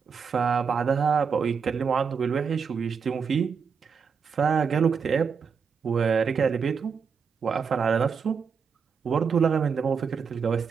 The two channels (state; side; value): quieter; left; 6.1 dB